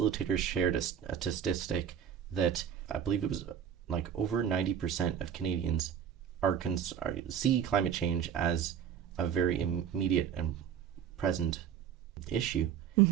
shared a statistic that I believe it was like over 90% of Canadians see climate change as a very immediate and present issue,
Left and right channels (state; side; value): quieter; left; 8.7 dB